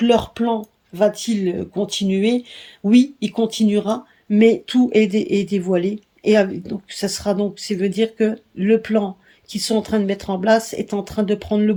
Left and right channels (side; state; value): both; identical; correlation 1.00